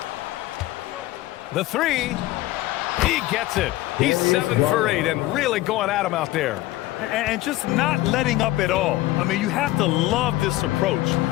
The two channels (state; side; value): quieter; right; 16.9 dB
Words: The 3. He gets it. He's 7 for 8 and really going at him out there. And just not letting up at all. I mean, you have to love this approach.